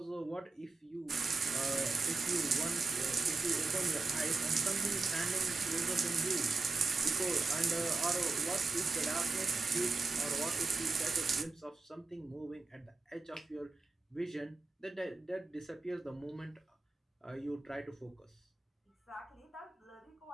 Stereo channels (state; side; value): quieter; left; 3.8 dB